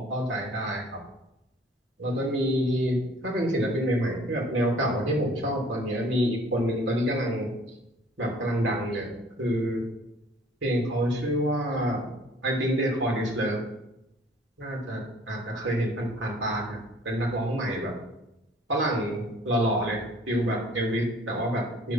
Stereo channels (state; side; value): normal; both; correlation 0.54